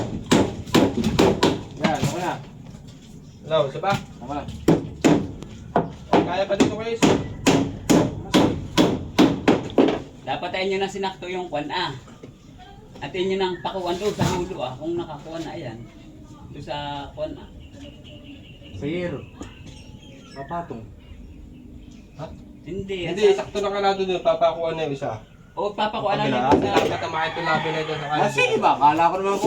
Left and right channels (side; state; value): both; identical; correlation 1.00